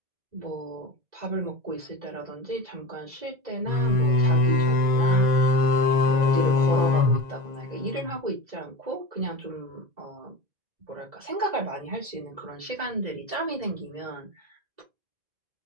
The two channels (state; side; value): late; left; 1.5 ms